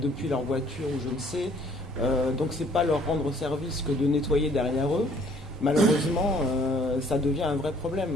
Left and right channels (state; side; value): normal; both; correlation 0.59